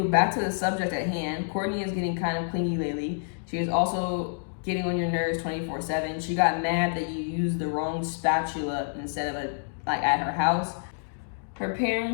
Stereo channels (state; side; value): silent; right; digital silence